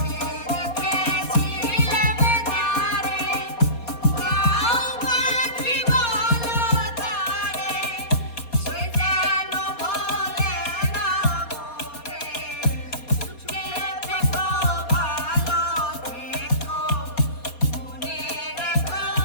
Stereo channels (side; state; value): right; late; 4.2 ms